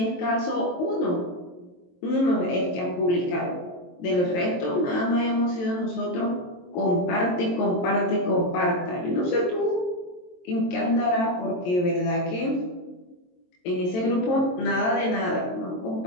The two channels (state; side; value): late; right; 22 ms